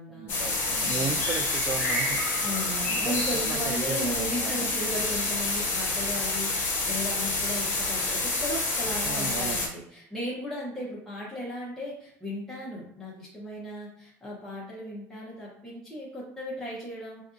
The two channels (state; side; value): normal; both; correlation 0.15